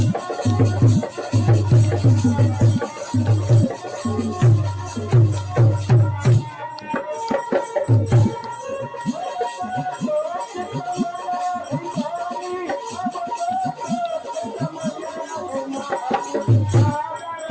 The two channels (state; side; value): identical; both; correlation 1.00